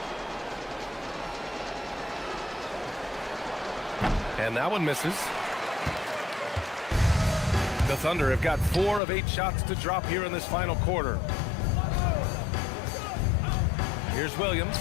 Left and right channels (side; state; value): right; drops out; at 9.0 s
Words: And that one misses. The Thunder have got 4 of 8 shots to drop here in this final quarter. Here's Williams